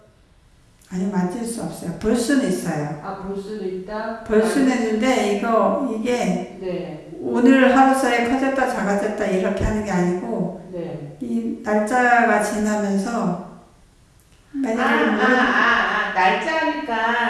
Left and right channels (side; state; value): both; identical; correlation 1.00